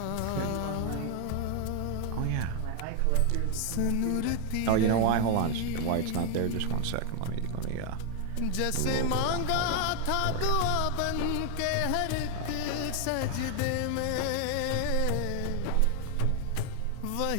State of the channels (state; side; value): different; both; correlation 0.00